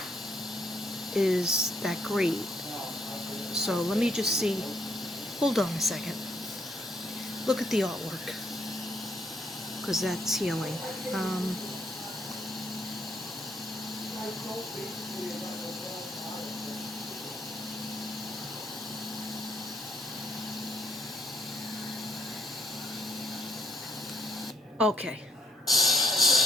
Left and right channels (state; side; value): normal; both; correlation 0.72